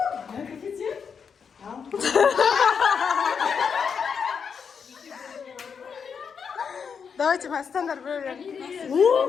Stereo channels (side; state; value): right; quieter; 6.4 dB